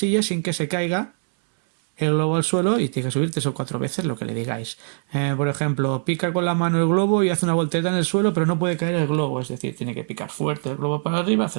sin que se caiga el globo al suelo y tiene que subir 3 o 4 veces lo que le digáis. Por ejemplo, pica con la mano el globo y hace una voltereta en el suelo, pero no puede caer el globo, es decir, tiene que picar fuerte el globo para arriba, hace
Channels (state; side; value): silent; left; 63 dB below the other